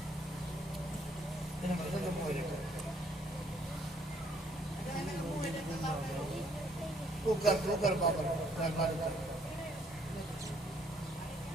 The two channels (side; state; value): both; normal; correlation 0.65